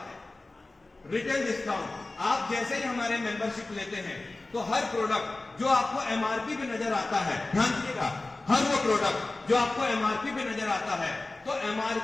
रिटेल डिस्काउंट, आप जैसे ही हमारे मेंबरशिप लेते हैं तो हर प्रोडक्ट जो आपको MRP पे नजर आता है, ध्यान दीजिएगा, हर वो प्रोडक्ट जो आपको MRP पे नजर आता है, तो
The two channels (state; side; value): quieter; right; 3.1 dB